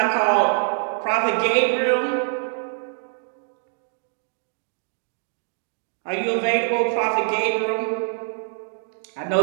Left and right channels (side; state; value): left; silent; digital silence